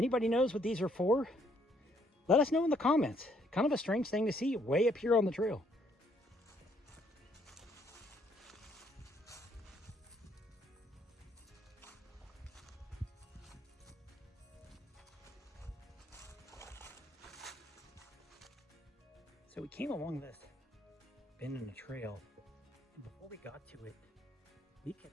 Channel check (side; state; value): both; normal; correlation 0.68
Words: knows what these are for, let us know in the comments. Kind of a strange thing to see way up here on the trail. So we came along this bend in the trail, and before we got to it, we